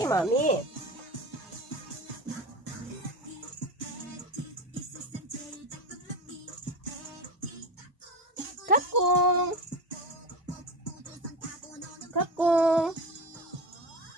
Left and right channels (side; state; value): both; normal; correlation 0.23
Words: mami. Kakong. Kakong.